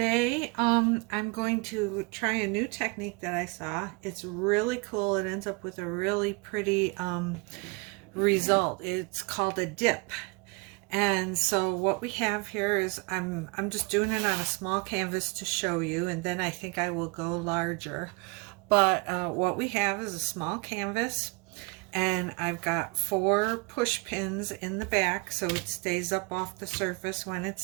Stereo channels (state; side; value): quieter; left; 29.4 dB